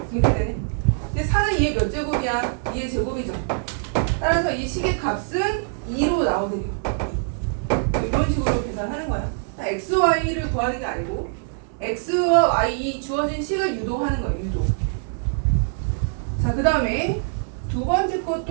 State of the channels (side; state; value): left; silent; digital silence